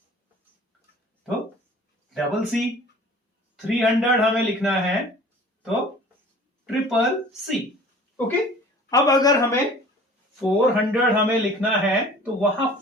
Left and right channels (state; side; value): normal; both; correlation 0.47